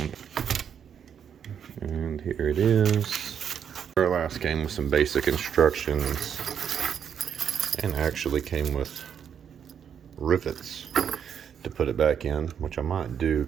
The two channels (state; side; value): quieter; left; 8.1 dB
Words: and here it is. Duralast came with some basic instructions and actually came with rivets to put it back in, which I might do